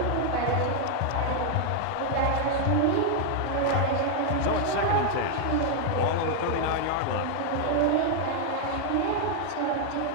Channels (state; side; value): different; both; correlation 0.00